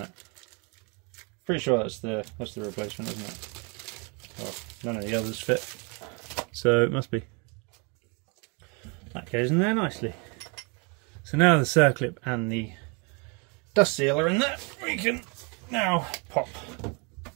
Pretty sure that's the replacement, isn't it? Well, none of the others fit, so it must be. That goes in there nicely. So now the circlip and the dust seal are in there, we can now pop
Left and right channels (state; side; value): quieter; left; 32.7 dB